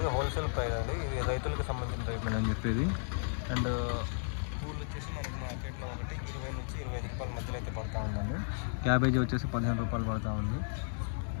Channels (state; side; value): silent; right; digital silence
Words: హోల్సేల్ ప్రైస్ అండి. ఇది రైతులకు సంబంధించిన రేట్ అని చెప్పేది. అండ్ పూలు వచ్చేసి మనకి మార్కెట్లో ఒకటి 20 నుంచి 25 రూపాయల మధ్యలో అయితే పడుతూ ఉందండి. క్యాబేజీ వచ్చేసి 15 రూపాయలు పడుతూ ఉంది.